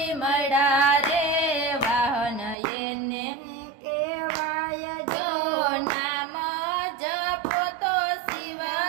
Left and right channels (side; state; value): left; drops out; at 2.6 s